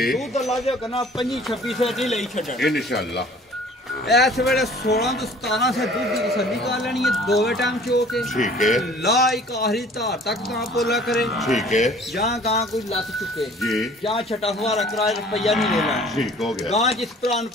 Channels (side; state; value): both; normal; correlation 0.51